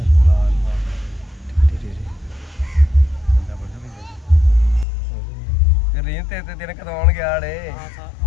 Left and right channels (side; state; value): right; drops out; at 4.9 s